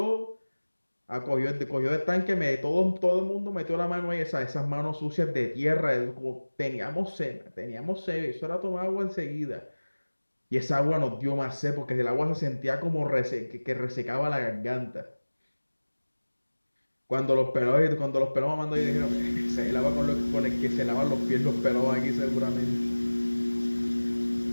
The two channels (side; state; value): both; inverted; correlation -1.00